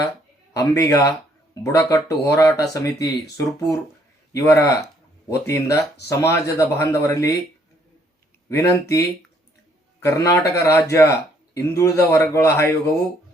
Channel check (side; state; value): both; normal; correlation 0.66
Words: ಅಂಬಿಗ ಬುಡಕಟ್ಟು ಹೋರಾಟ ಸಮಿತಿ ಸುರಪುರ್ ಇವರ ವತಿಯಿಂದ ಸಮಾಜದ ಬಾಂಧವರಲ್ಲಿ ವಿನಂತಿ. ಕರ್ನಾಟಕ ರಾಜ್ಯ ಹಿಂದುಳಿದ ವರ್ಗಗಳ ಆಯೋಗವು